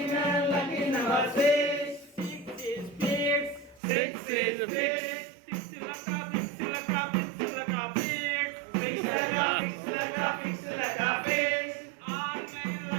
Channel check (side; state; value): left; drops out; at 3.8 s